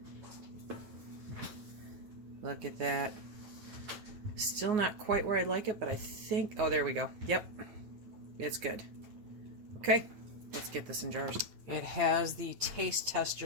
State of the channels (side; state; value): left; late; 9.5 ms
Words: Look at that. Still not quite where I'd like it, but I think, oh, there we go. Yep, it's good. Okay, let's get this in jars. It has the taste